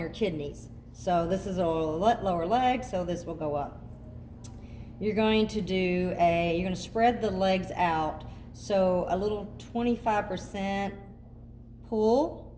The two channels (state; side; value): identical; both; correlation 1.00